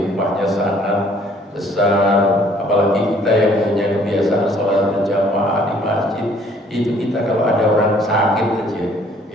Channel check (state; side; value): normal; both; correlation 0.59